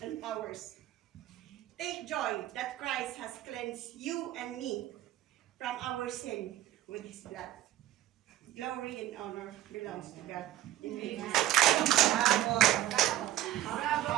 powers. Take joy that Christ has cleansed you and me from our sin with His blood. Glory and honor belongs to God. Amen. Bravo. Bravo.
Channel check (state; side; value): quieter; left; 13.7 dB